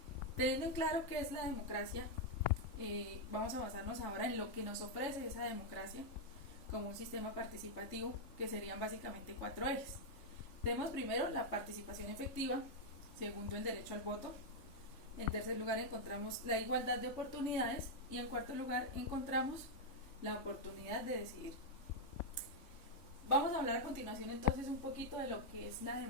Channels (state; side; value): late; right; 3.6 ms